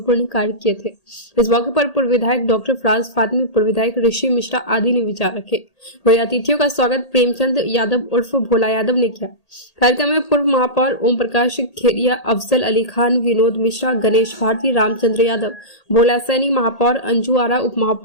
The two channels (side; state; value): right; late; 1.8 ms